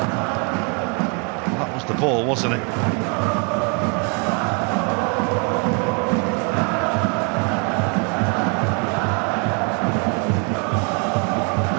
The ball, wasn't it?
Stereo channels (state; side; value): quieter; left; 33.3 dB